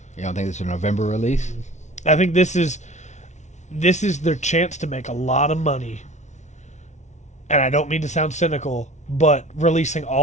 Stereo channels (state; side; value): late; right; 0.33 ms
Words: You don't think it's a November release? I think this is their chance to make a lot of money. And I don't mean to sound cynical, but releasing